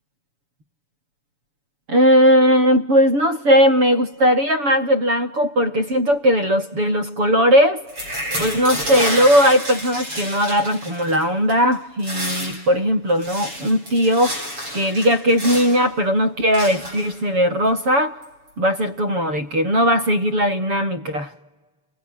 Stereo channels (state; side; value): late; left; 7.0 ms